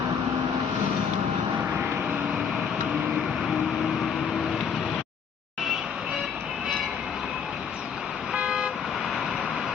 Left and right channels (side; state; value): right; quieter; 6.8 dB